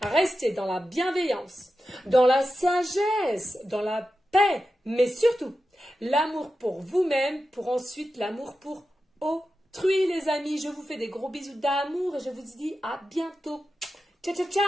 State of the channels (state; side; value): normal; both; correlation 0.91